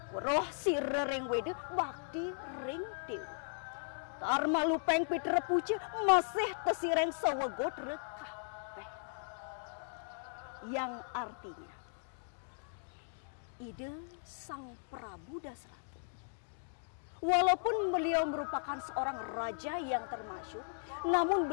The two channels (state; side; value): silent; right; digital silence